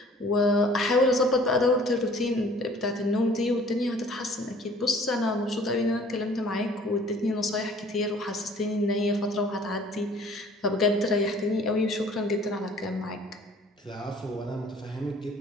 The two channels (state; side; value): normal; both; correlation 0.53